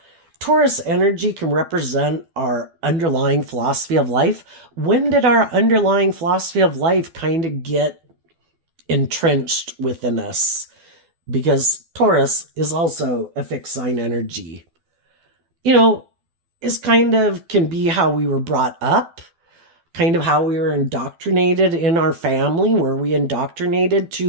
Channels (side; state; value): left; late; 12 ms